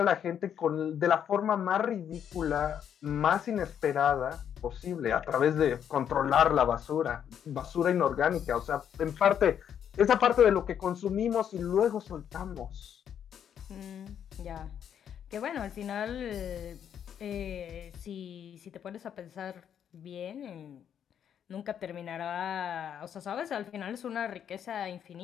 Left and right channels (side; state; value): right; quieter; 8.9 dB